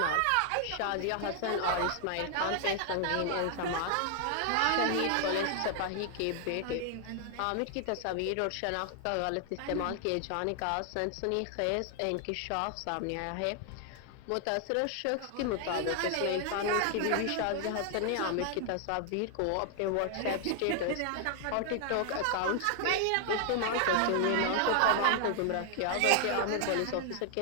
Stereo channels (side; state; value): both; different; correlation 0.00